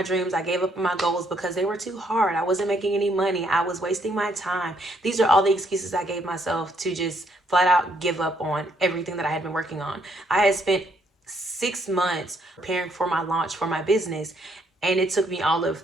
dreams. I gave up on my goals because they were too hard. I wasn't making any money. I was wasting my time. These are all the excuses I gave myself to just flat out give up on everything that I had been working on. I had spent 6 months preparing for my launch for my business, and it took me all of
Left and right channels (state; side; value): normal; both; correlation 0.70